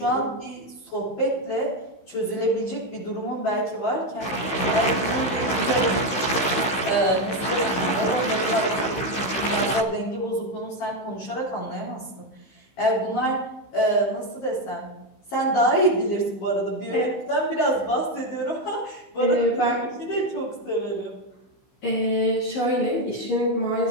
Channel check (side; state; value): right; late; 15 ms